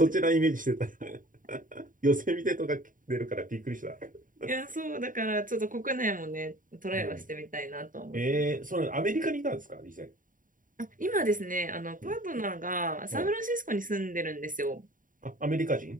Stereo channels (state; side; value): late; left; 0.39 ms